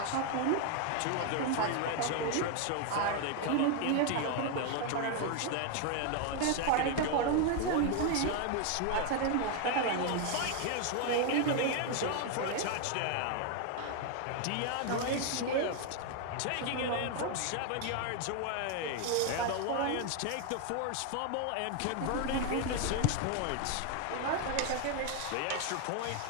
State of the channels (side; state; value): both; different; correlation 0.01